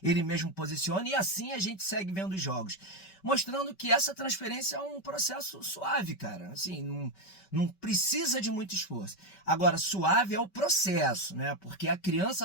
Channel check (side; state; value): right; late; 5.2 ms